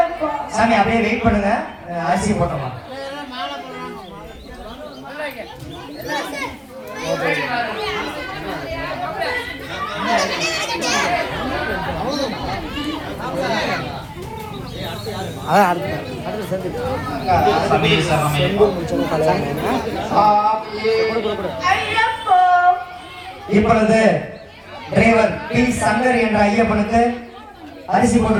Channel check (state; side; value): identical; both; correlation 1.00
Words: சாமி அப்படியே வெயிட் பண்ணுங்க. அரிசி போட்டோமா இப்பொழுது டிரைவர் பி சங்கர் என்ற ஐயப்பனுக்கு அரிசி போட்டு